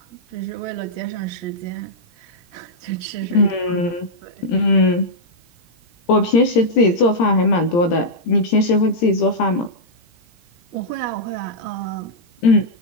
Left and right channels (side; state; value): right; late; 17 ms